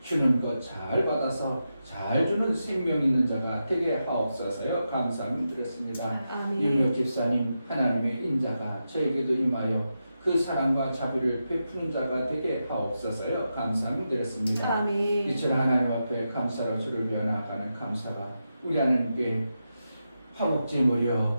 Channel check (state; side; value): inverted; both; correlation -0.88